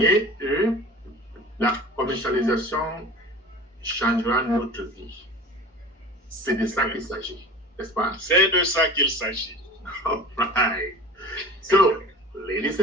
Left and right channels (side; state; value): both; normal; correlation 0.39